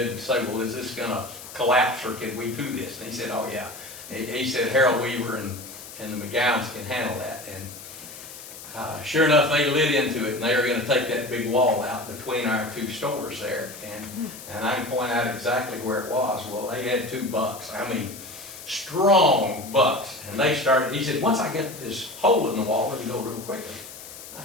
and say, well, is this gonna collapse or can we do this? And he said, oh yeah. He said Harold Weaver and the McGowns can handle that. And sure enough, they lit into it and they were gonna take that big wall out between our two stores there. And I can point out exactly where it was. Well, they had 2 bucks. I mean, strong bucks. And they started, he said, once I get this hole in the wall, we can go real quickly. I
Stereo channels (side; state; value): left; noise; hiss, 14 dB below the sound